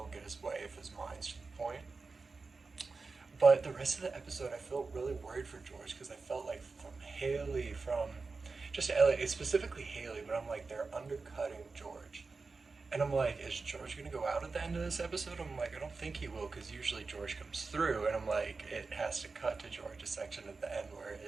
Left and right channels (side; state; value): left; quieter; 4.1 dB